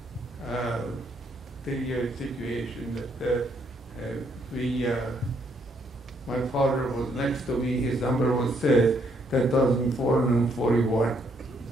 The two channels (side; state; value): both; normal; correlation 0.71